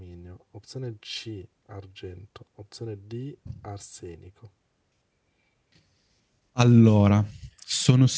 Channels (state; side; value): identical; both; correlation 1.00